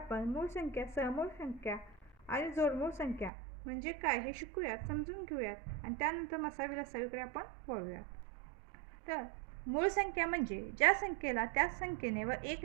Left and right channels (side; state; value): left; drops out; at 3.3 s